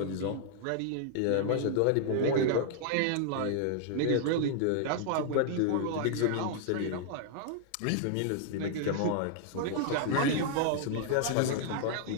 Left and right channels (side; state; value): both; different; correlation -0.01